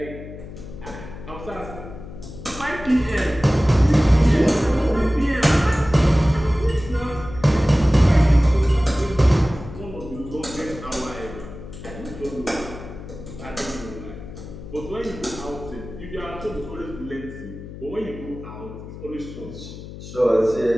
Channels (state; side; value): noise; left; hum, 13 dB below the sound